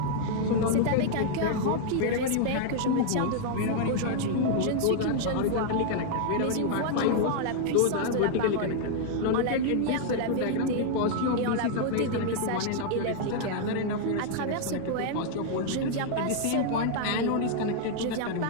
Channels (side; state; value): both; different; correlation -0.01